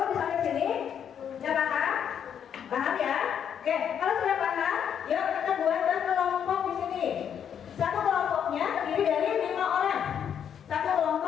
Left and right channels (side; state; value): right; quieter; 8.5 dB